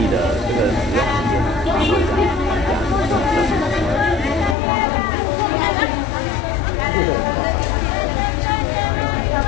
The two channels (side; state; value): right; drops out; at 4.5 s